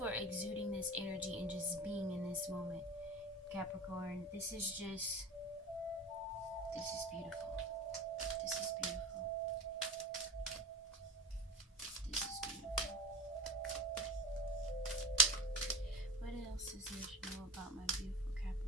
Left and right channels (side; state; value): both; normal; correlation 0.31